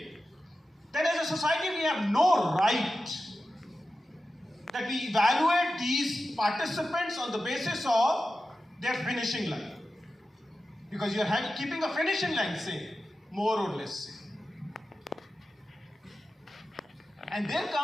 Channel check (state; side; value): normal; both; correlation 0.93